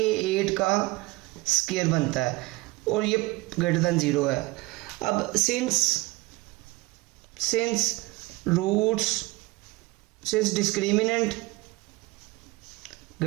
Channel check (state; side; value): quieter; left; 21.6 dB